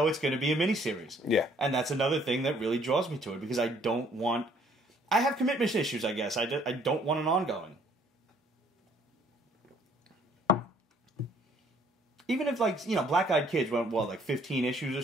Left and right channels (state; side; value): normal; both; correlation 0.62